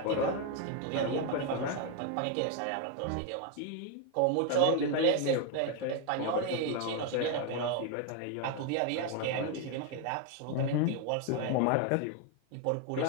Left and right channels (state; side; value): different; both; correlation 0.01